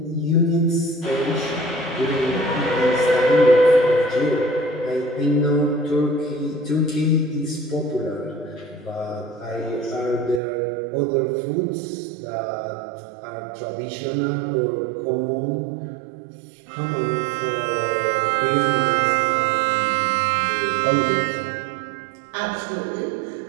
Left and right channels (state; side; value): drops out; left; at 10.4 s